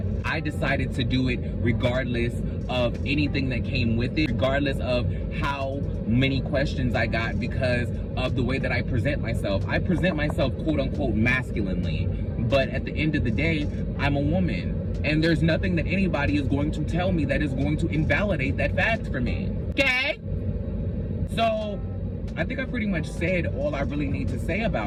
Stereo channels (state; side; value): identical; both; correlation 1.00